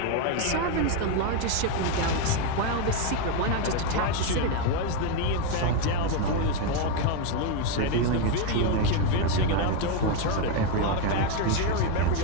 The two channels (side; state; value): both; different; correlation 0.02